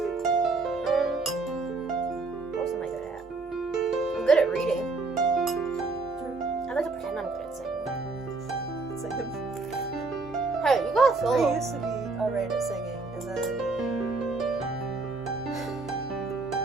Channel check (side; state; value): left; quieter; 3.7 dB